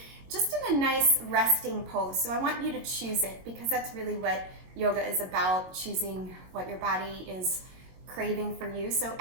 just in a nice resting pose. So I want you to choose it because that's really what yoga is about, choosing what your body is craving for you. So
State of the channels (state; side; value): late; left; 22 ms